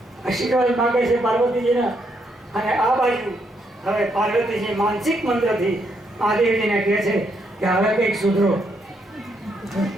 આશીર્વાદ માંગે છે પાર્વતીજીના. અને આ બાજુ હવે પાર્વતીજી માનસિક મંત્રથી મહાદેવજીને કહે છે કે હવે કંઈક સુધરો.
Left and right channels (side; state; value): both; normal; correlation 0.76